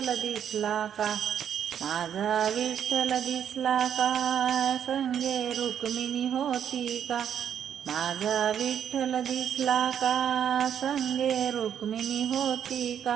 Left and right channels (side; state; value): left; quieter; 8.9 dB